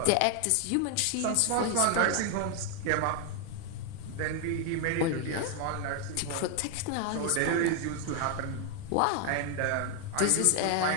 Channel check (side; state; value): both; different; correlation 0.00